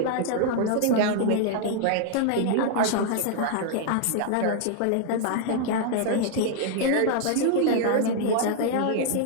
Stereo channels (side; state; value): both; different; correlation 0.00